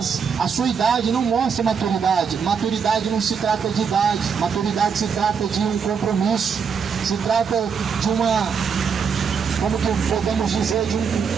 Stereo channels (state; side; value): quieter; left; 6.3 dB